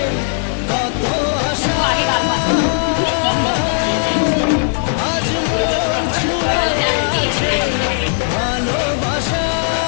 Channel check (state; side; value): silent; right; 57 dB below the other